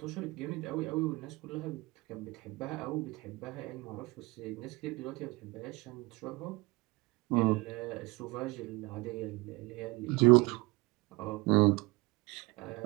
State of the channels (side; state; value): left; quieter; 23.4 dB